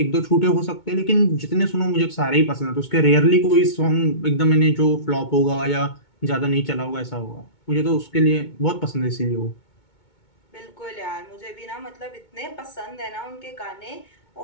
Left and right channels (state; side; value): late; right; 2.2 ms